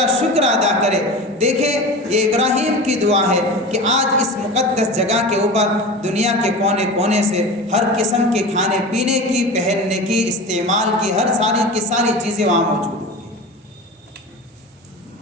شکر ادا کرے۔ دیکھیں یہ ابراہیم کی دعا ہے کہ آج اس مقدس جگہ کے اوپر دنیا کے کونے کونے سے ہر قسم کے کھانے پینے کی، پہننے کی، استعمال کی، ہر ساری چیزیں وہاں موجود ہیں۔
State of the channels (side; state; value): both; normal; correlation 0.31